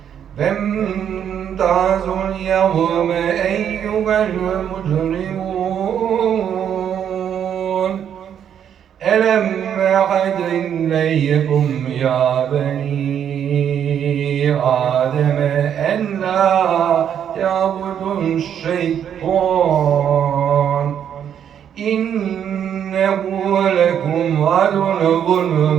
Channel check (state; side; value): quieter; left; 9.0 dB